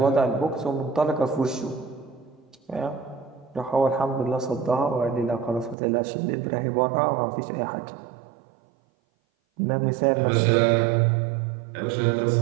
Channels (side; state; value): left; drops out; at 5.8 s